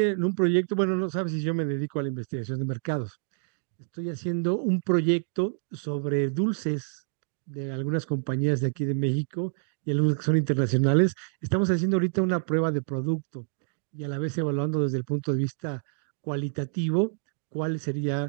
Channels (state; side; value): silent; left; digital silence